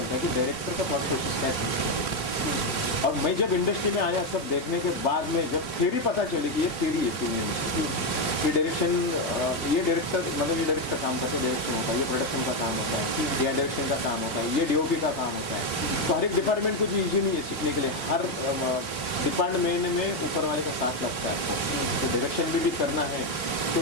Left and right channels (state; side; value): late; right; 3.3 ms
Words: है कि डायरेक्टर का थॉट प्रोसेस क्या स्क्रिप्ट को लेकर। और मैं जब इंडस्ट्री में आया, सब देखने के बाद में जब थ्योरी पता चली कि ये थ्योरी है फिल्म इंडस्ट्री की, ये डायरेक्शन, ये डायरेक्टर मतलब ये डायरेक्टर काम करते हैं, डायरेक्शन होता है, ये प्रोडक्शन का काम होता है, या डायरेक्शन का काम होता है, ये डीओपी का काम होता है। तो हर एक डिपार्टमेंट कुछ इजी नहीं है सीखने के लिए, हर डिपार्टमेंट में ऊपर वाले का साथ लगता है आपको। तो डायरेक्शन भी करना है, तो